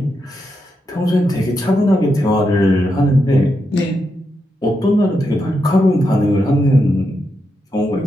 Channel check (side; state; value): both; normal; correlation 0.84